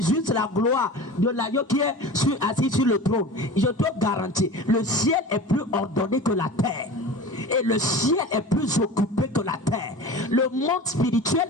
la gloire de l'agneau qui est assis sur le trône. Je te garantis, le ciel est plus ordonné que la terre. Et le ciel est plus occupé que la terre. Le monde spirituel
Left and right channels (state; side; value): normal; both; correlation 0.35